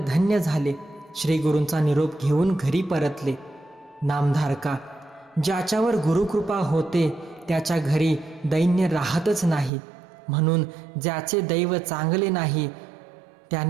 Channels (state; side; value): drops out; left; at 9.7 s